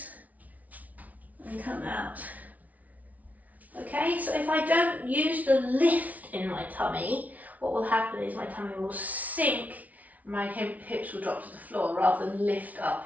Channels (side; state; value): left; late; 0.072 ms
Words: and come out. Okay, so if I don't use the lift in my tummy, what will happen is my tummy will sink, my hips will drop to the floor rather than lift